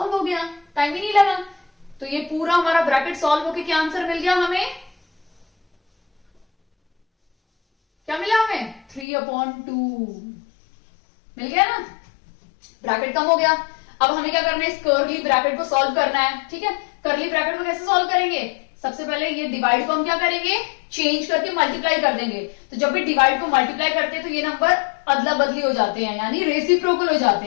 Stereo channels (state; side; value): drops out; right; at 9.1 s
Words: हो गया, टाइम ही नहीं लगा। तो ये पूरा हमारा ब्रैकेट सॉल्व होके क्या आंसर मिल गया हमें, क्या मिला हमें 3/2 मिल गया ना, ब्रैकेट कम हो गया। अब हमें क्या करना है, इस कर्ली ब्रैकेट को सॉल्व करना है। ठीक है, कर्ली ब्रैकेट को कैसे सॉल्व करेंगे, सबसे पहले ये डिवाइड को हम क्या करेंगे, चेंज करके मल्टीप्लाई कर देंगे। तो जब भी डिवाइड को मल्टीप्लाई करते हैं तो ये नंबर अदला बदली हो जाते हैं, यानी रेसिप्रोकल हो जाते